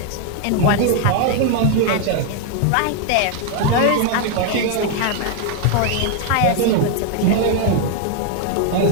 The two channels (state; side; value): different; both; correlation 0.01